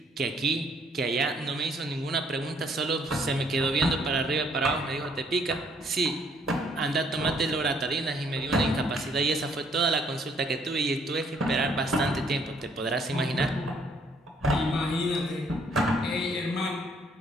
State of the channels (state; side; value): normal; both; correlation 0.65